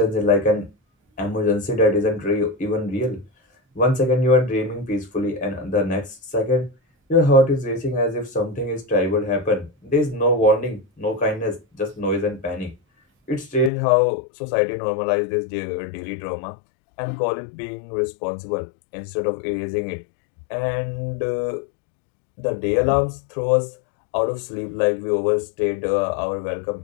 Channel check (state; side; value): drops out; right; at 13.7 s